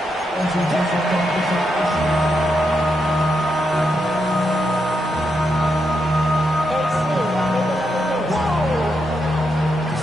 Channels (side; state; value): both; normal; correlation 0.82